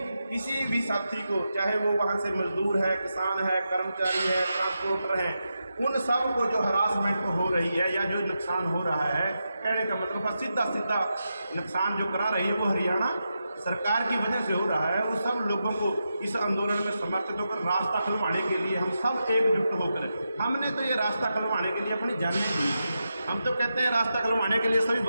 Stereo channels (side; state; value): both; inverted; correlation -0.88